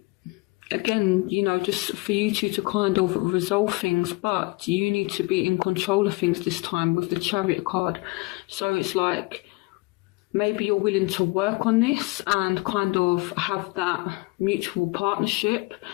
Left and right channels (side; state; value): right; quieter; 25.4 dB